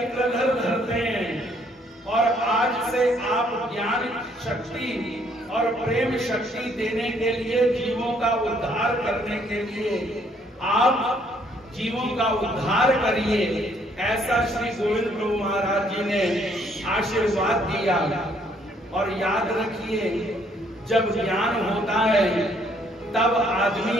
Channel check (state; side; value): normal; both; correlation 0.66